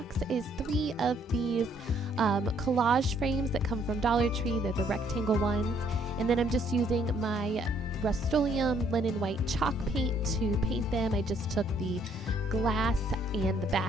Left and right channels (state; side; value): normal; both; correlation 0.66